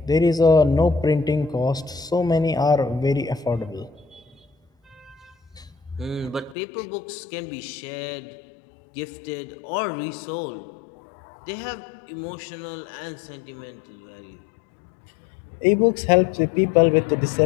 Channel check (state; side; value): drops out; right; at 6.6 s